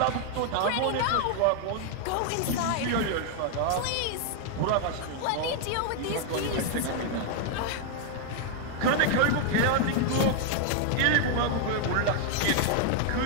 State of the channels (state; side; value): different; both; correlation 0.00